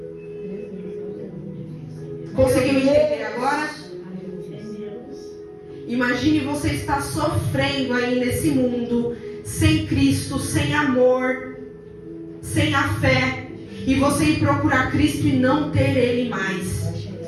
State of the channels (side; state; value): both; identical; correlation 1.00